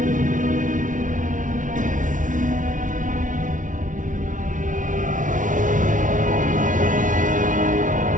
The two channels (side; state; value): left; late; 0.38 ms